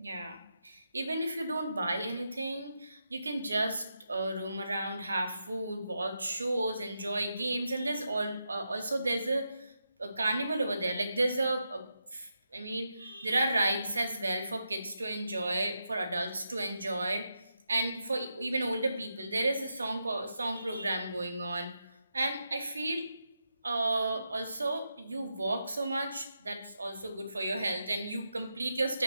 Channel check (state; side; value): inverted; both; correlation -0.86